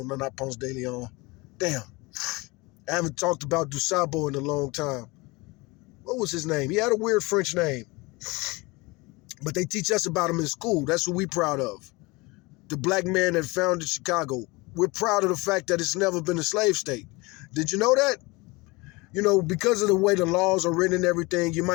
not Ponce de Leon. Damn, I haven't talked about Dusabo in a long time. What was his name? He had a weird French name. But they teach us about him in school. That's what we're proud of. The black man that founded Chicago. We're proud of the fact that it's never been a slave state. Did you know that? You know, because of the way the laws are written and everything, you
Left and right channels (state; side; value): quieter; right; 24.2 dB